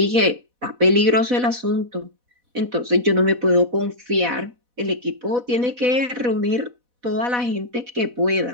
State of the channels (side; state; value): left; late; 4.1 ms